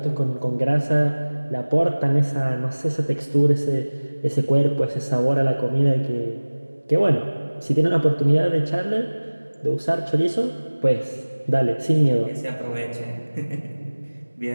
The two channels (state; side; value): inverted; both; correlation -1.00